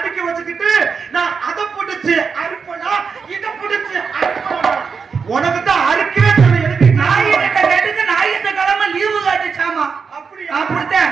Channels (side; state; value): left; quieter; 5.6 dB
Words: வச்சுக்கிட்டு நான் அதை புடிச்சு அறுப்பனா இதை புடிச்சு அறுப்பனா. உனக்கு தான் அறுக்கவே தெரியல. எனக்கு நாயிட்ட கேட்டுக்கு ஞாயிற்று கிழமை லீவு காட்டுச்சாமா. அப்படித்தான்